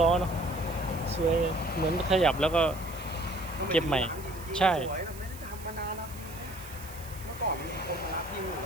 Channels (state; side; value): noise; right; hiss, 17 dB below the sound